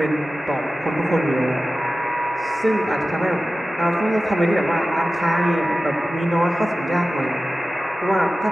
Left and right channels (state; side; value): normal; both; correlation 0.95